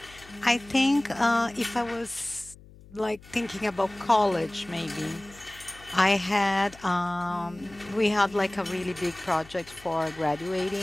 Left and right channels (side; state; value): left; noise; hum, 22 dB below the sound